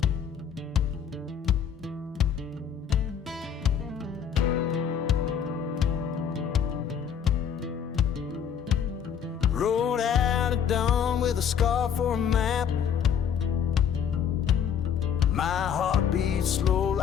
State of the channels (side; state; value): right; quieter; 7.9 dB